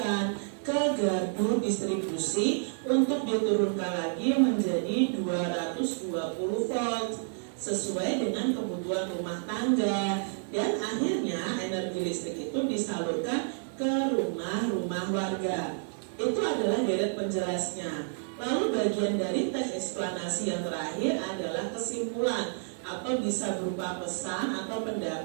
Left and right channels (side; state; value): left; silent; digital silence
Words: ke gardu distribusi untuk diturunkan lagi menjadi 220 volt sesuai dengan kebutuhan rumah tangga, dan akhirnya energi listrik itu disalurkan ke rumah-rumah warga. Itu adalah deret penjelasnya. Lalu bagian dari teks eksplanasi yang terakhir adalah kesimpulan atau bisa berupa pesan atau